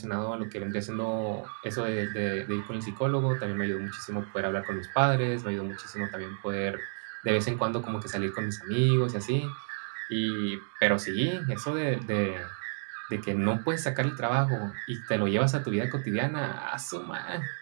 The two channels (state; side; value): silent; left; digital silence